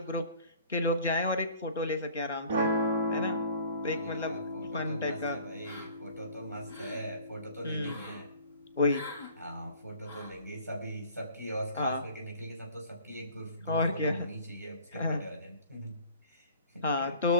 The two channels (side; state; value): both; inverted; correlation -0.49